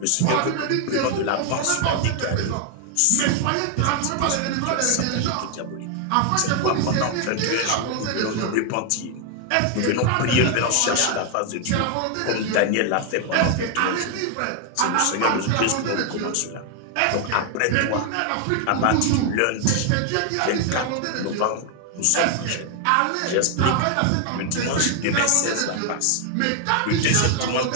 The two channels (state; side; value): different; both; correlation 0.00